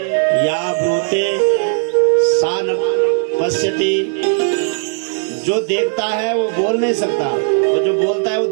या ब्रूते सा न पश्यति। जो देखता है वो बोल नहीं सकता, और जो बोलता है वो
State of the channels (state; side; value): silent; left; 58 dB below the other